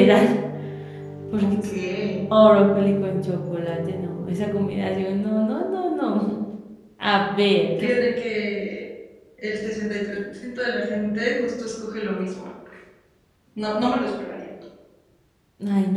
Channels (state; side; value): identical; both; correlation 1.00